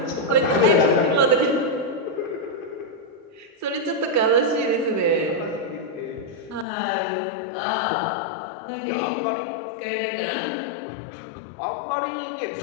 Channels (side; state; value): right; drops out; at 6.7 s